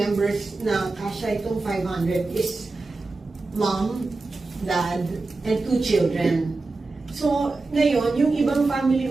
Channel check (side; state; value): left; quieter; 3.5 dB